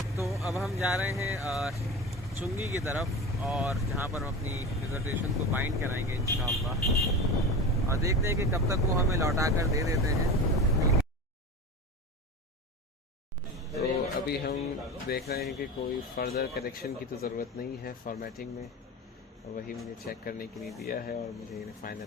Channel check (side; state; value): both; normal; correlation 0.29